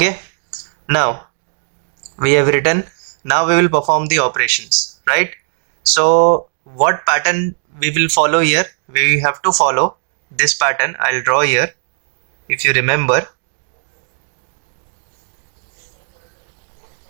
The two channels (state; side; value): silent; left; digital silence